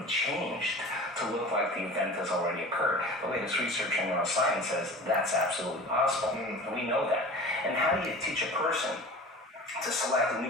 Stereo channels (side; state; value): both; normal; correlation 0.39